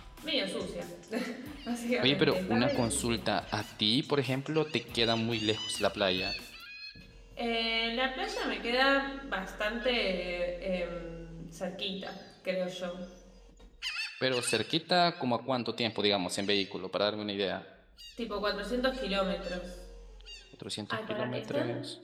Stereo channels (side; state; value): both; identical; correlation 1.00